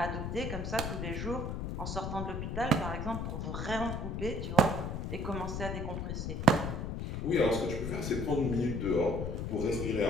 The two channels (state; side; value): noise; left; rumble, 3 dB below the sound